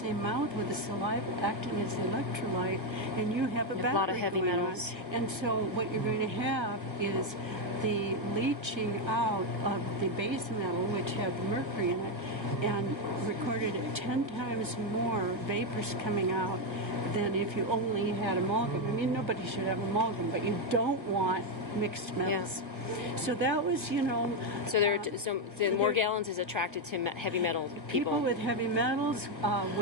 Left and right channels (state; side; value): late; left; 1.5 ms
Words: mouth with the saliva acting as the electrolyte, and you have a battery. A lot of heavy going metals. on. And so what you're going to have is the leaching out of the base metal, which have mercury in it, and recorded at 10 times more vapors coming out than if you only had amalgam. I mean, nobody should have amalgam, but you don't want mixed metals. Yeah. So that was, you know. So the Morgellons is attracted to heavy metal people. People with heavy metals,